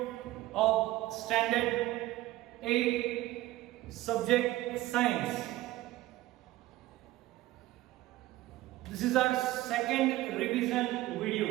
of standard 8 subject science. This is our second revision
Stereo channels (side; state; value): left; quieter; 16.7 dB